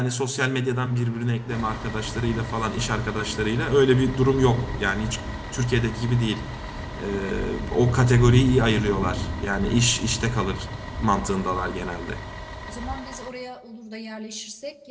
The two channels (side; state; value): both; identical; correlation 1.00